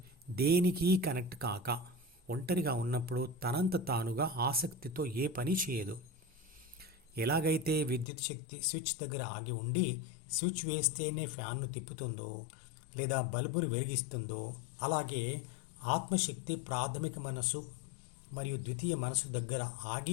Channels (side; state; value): right; drops out; at 8.1 s